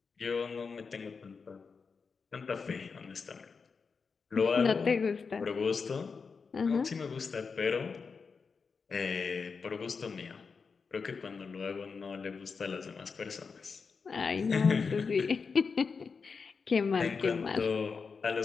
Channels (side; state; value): right; quieter; 5.2 dB